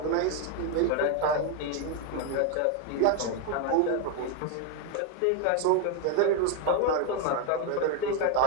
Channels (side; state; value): both; different; correlation 0.01